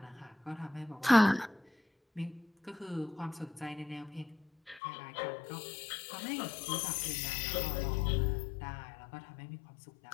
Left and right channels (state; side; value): drops out; right; at 4.8 s